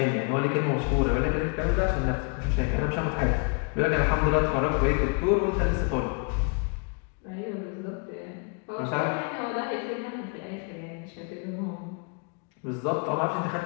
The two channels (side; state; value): right; quieter; 36.5 dB